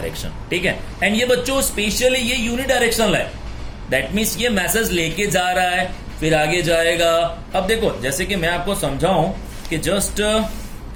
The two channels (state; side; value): identical; both; correlation 1.00